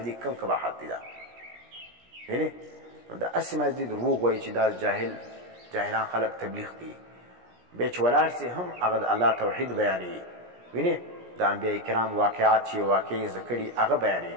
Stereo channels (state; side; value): late; left; 17 ms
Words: دې کم قباحت دی. دا وینې؟ نو دا هسې مازدي دروغ وایي چې دا جاهلان خلک تبلیغ کوي، بیا چې ولاړ سي هم هغه د الله توحید بیانوي. وینې؟ د انبیاء کرام واقعات چې واقعي زده کړي هغه بیانوي.